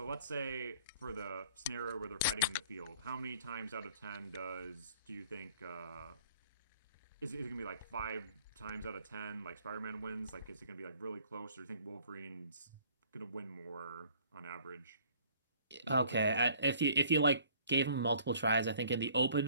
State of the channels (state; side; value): inverted; both; correlation -0.56